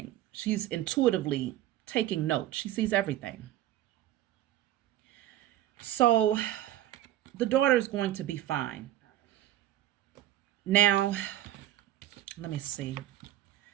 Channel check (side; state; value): left; quieter; 13.6 dB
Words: She's intuitively taking notes. She sees everything. So the daughter is going to be fine. Now, let me see.